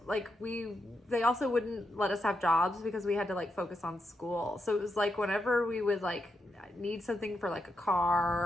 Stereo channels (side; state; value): both; normal; correlation 0.83